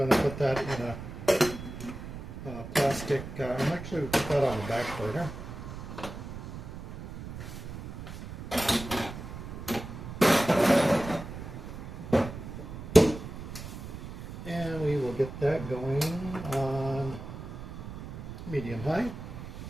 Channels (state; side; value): noise; right; rumble, 10 dB below the sound